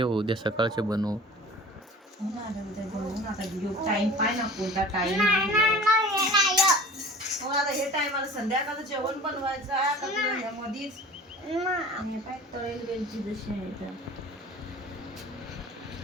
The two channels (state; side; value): normal; both; correlation 0.41